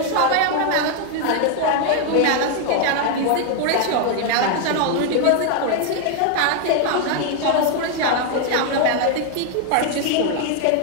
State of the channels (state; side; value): different; both; correlation 0.01